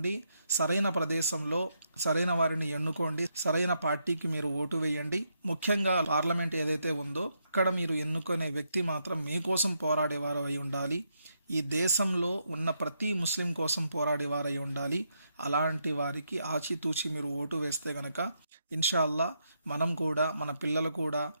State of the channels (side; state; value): both; inverted; correlation -0.79